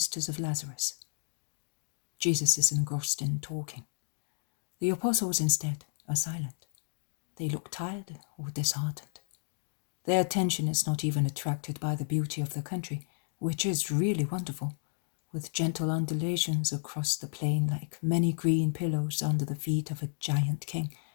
of Lazarus. Jesus is engrossed in talking. The apostles, instead, are silent. They look tired or disheartened. Their attention is not even attracted by the beauty of the country, which is really wonderful, with gentle undulations across the plain like many green pillows under the feet of a giant king,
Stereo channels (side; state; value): right; silent; digital silence